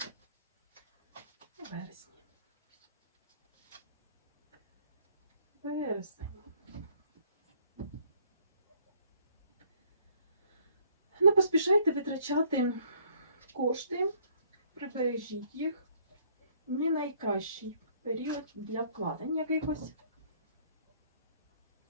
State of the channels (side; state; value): both; inverted; correlation -0.62